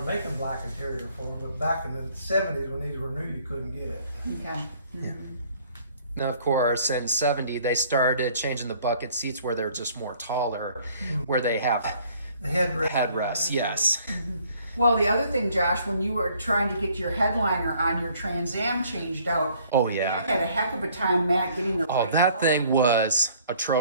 making black interior for them, but back in the 70s when these were new, you couldn't get it. Okay. now of course, in 70, they started changing the bucket seats where they're just more taller, where they have The headrest. headrests, yes. Well, the other thing, Josh, when you were trying to get your headliner on your Trans Am changed out, Oh, they yeah. had a heck of a time, Matt, getting the Oh, right that color. thing was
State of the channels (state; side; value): inverted; both; correlation -0.59